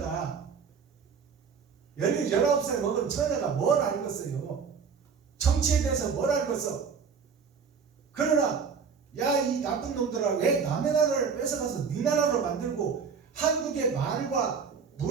19살 먹은 처녀가 뭘 알겠어요? 정치에 대해서 뭘 알겠어? 그러나 야 이 나쁜 놈들아 왜 남의 나라를 뺏어가서 네 나라로 만들고 한국의 말과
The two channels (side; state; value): left; quieter; 6.0 dB